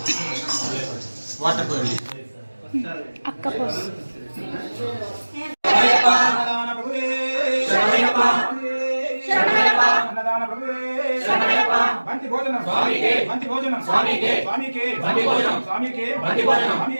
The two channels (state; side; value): inverted; both; correlation -1.00